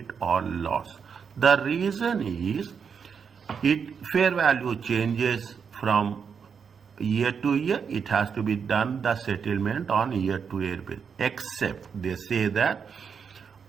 or loss. The reason is fair value changes from year to year. It has to be done the settlement on year-to-year basis. Except they say that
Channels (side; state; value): left; quieter; 6.5 dB